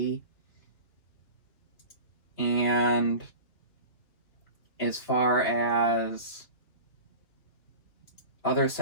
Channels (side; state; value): right; late; 2.7 ms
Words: And as far as other